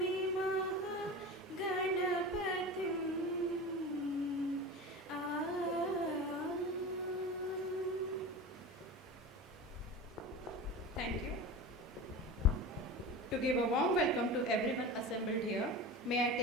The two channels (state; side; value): normal; both; correlation 0.30